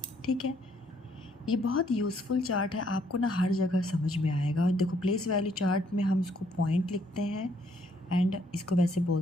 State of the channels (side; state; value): both; normal; correlation 0.68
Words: ठीक है, ये बहुत यूज़फुल चार्ट है, आपको ना हर जगह समझ में आएगा। और देखो, प्लेस वैल्यू चार्ट में हम इसको पॉइंट लिखते हैं एंड इसको वैसे